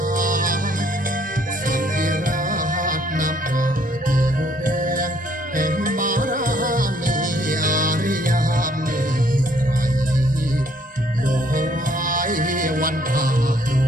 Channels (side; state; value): both; normal; correlation 0.64